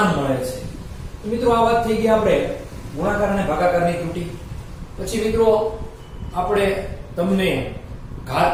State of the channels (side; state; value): both; identical; correlation 1.00